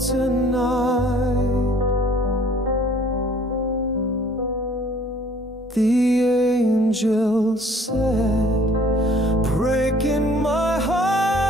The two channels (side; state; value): both; normal; correlation 0.55